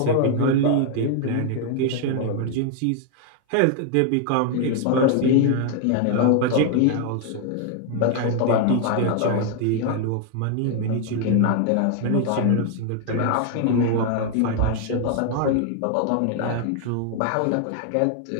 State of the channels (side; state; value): both; different; correlation 0.00